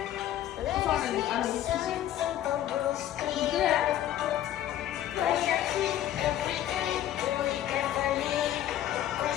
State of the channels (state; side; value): quieter; right; 12.1 dB